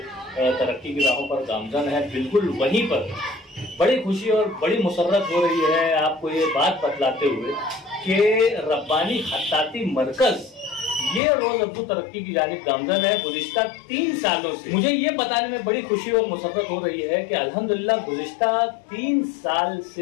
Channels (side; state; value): right; drops out; at 11.2 s